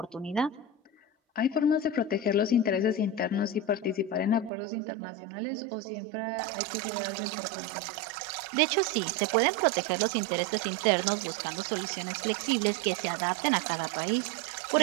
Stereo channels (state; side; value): drops out; left; at 4.5 s